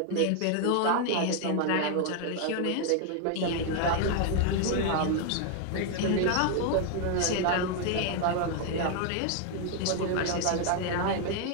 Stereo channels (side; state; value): both; different; correlation 0.00